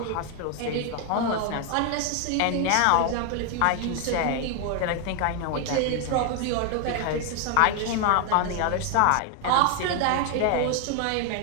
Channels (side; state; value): both; different; correlation 0.01